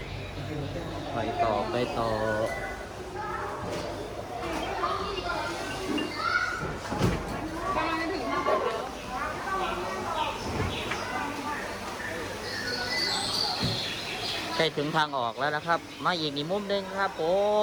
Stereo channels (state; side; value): identical; both; correlation 1.00